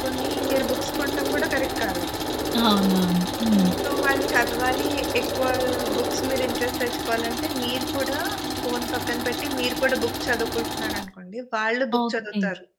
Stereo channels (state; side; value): identical; both; correlation 1.00